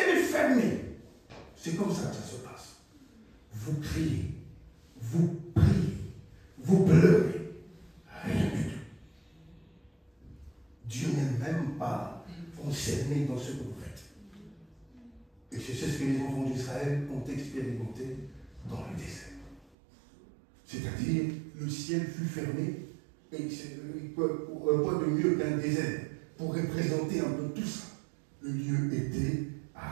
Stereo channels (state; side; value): drops out; left; at 19.6 s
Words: est fermé, c'est comme ça que ça se passe. Vous criez, vous priez, vous pleurez, rien du tout. Dieu n'est même pas concerné dans ce que vous faites. Et c'est ce que les enfants d'Israël ont expérimenté dans le désert. C'est-à-dire, le ciel fut fermé, et quoi de mieux qu'un désert pour représenter un peu tout ça. Le lieu était